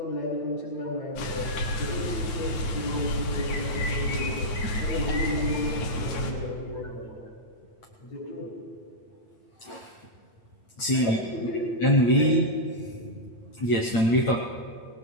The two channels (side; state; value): right; late; 8.8 ms